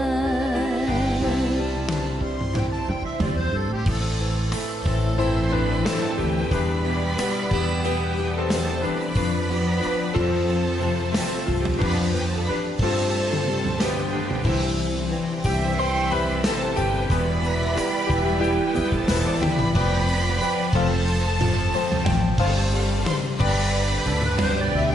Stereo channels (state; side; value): normal; both; correlation 0.80